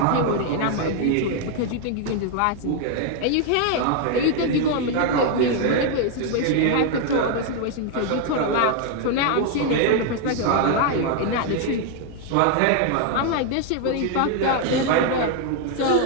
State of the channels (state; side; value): different; both; correlation 0.00